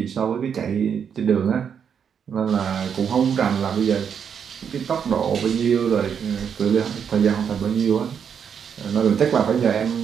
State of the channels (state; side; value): quieter; left; 7.5 dB